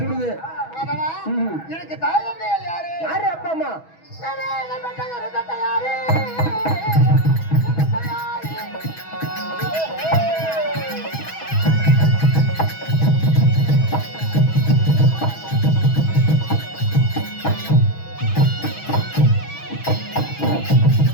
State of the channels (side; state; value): right; late; 6.2 ms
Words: சுடுது. மாதவா, ம். எனக்கு தாய் தந்தையார் யாரு? யாரு அப்பா அம்மா? யாரு?